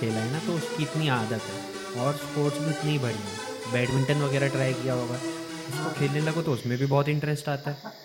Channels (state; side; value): identical; both; correlation 1.00